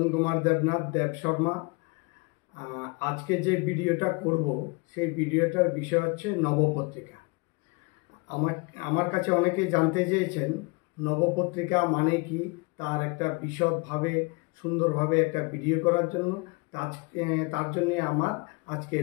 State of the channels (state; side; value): quieter; right; 29.1 dB